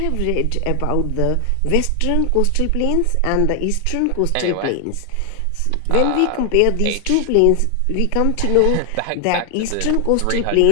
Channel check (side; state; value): both; different; correlation 0.00